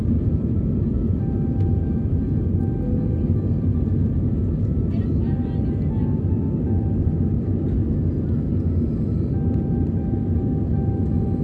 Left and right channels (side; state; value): both; identical; correlation 1.00